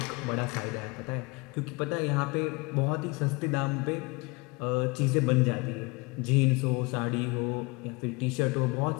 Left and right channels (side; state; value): right; quieter; 26.9 dB